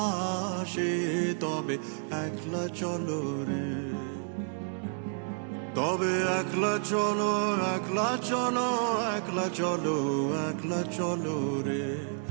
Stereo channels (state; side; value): silent; left; digital silence